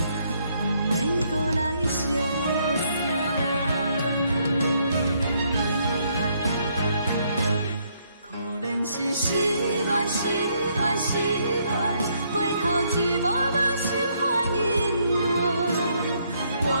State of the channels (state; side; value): inverted; both; correlation -0.71